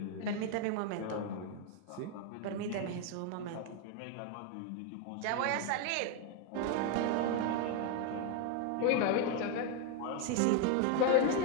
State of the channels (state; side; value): different; both; correlation 0.01